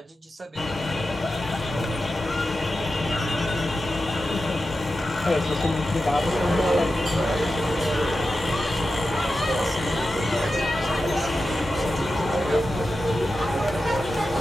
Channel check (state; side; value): normal; both; correlation 0.91